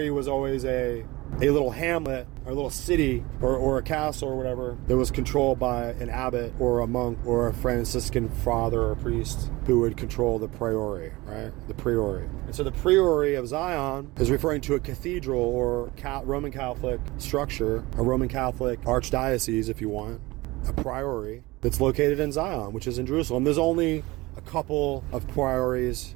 was always a little hamlet or a little city or a castle or whatever that was controlled by an abbot or a monk or a Franciscan father or priest who would control the priory, right? The priory. And so the Priory of Zion is referring to a cathedral or Roman Catholic structure, a Roman Catholic archdiocese, if you want, a priory that's located in Zion, which is in Jerusalem. There's only a couple of priories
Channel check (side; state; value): left; quieter; 21.2 dB